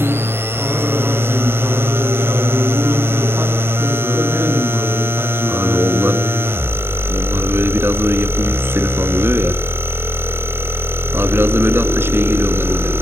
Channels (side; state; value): left; late; 0.11 ms